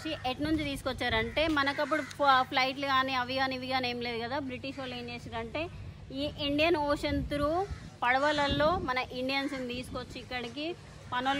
ఎటు నుంచి తీసుకొచ్చారంటే, మనకప్పుడు ఫ్లైట్లు కానీ అవి కానీ ఇవి కానీ ఏం లేదు కదా. బ్రిటిష్ వాళ్ళు ఏం చేశారంటే ఈ ఇండియన్ ఓషన్ త్రూ పడవలలో మన ఇండియన్స్ ని తీసుకొచ్చి ఇక్కడికి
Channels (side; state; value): both; identical; correlation 1.00